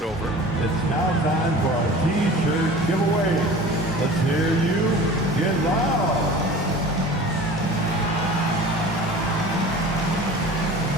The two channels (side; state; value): both; normal; correlation 0.40